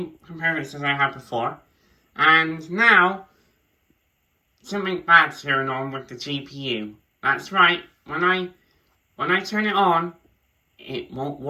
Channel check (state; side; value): identical; both; correlation 1.00